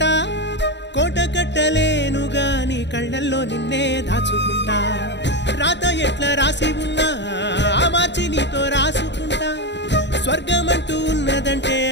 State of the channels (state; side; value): late; right; 0.51 ms